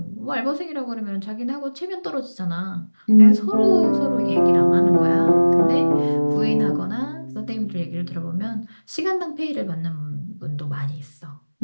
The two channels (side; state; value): both; inverted; correlation -1.00